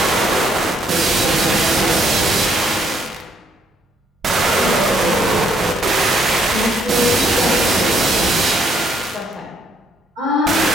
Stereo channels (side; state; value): both; normal; correlation 0.69